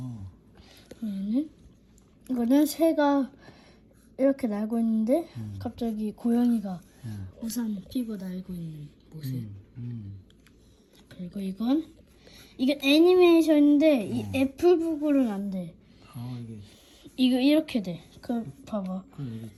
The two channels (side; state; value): both; identical; correlation 1.00